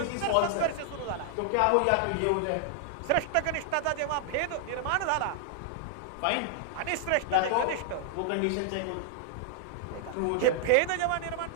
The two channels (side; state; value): both; different; correlation 0.00